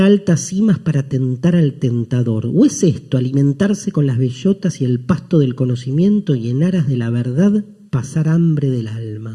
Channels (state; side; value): identical; both; correlation 1.00